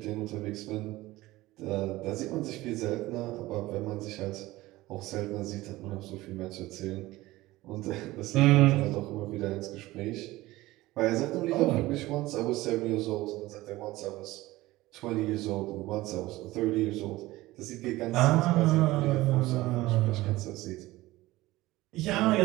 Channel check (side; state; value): left; quieter; 18.3 dB